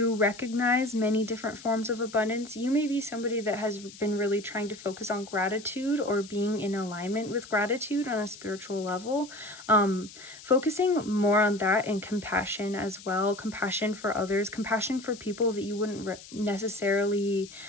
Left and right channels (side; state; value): left; noise; hiss, 17 dB below the sound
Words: recognize many different forms of abundance. You may be somebody that has been really trying to focus on gratitude or being in alignment with gratitude on a spiritual level. Focusing more on that, and compassion as well. Compassion for others, compassion for people that you wouldn't necessarily